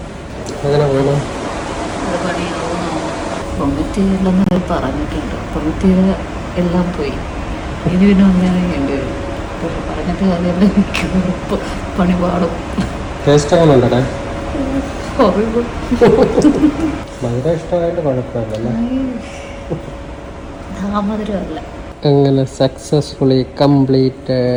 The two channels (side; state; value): both; identical; correlation 1.00